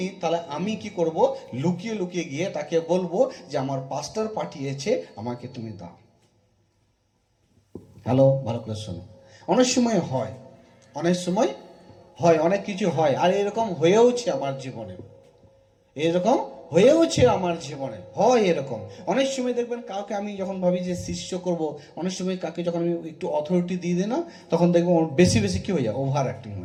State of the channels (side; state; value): both; identical; correlation 1.00